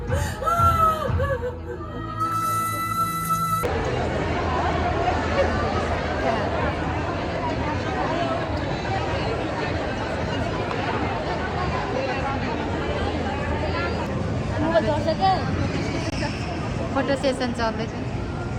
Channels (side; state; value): both; identical; correlation 1.00